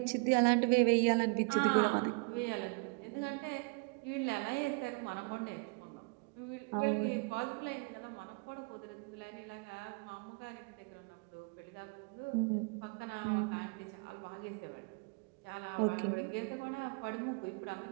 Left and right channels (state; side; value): quieter; left; 33.3 dB